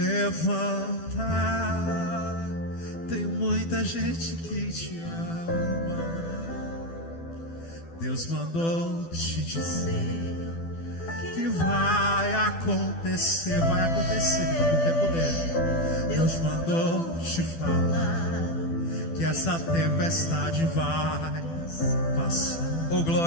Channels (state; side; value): late; right; 12 ms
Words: Tem muita gente que te ama. Deus mandou te dizer que vai acontecer. Vai acontecer no tempo dele. Deus mandou te falar que essa tempestade vai passar. Oh,